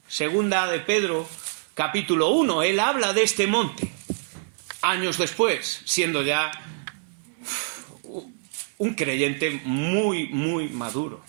2 de Pedro, capítulo 1. Él habla de este monte, años después, siendo ya un creyente muy, muy maduro,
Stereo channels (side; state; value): left; silent; 58 dB below the other